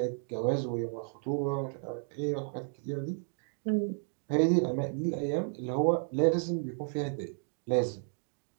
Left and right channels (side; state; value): left; silent; 56 dB below the other